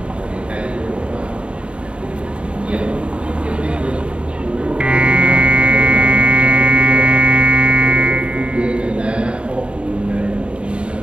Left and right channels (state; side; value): late; left; 0.056 ms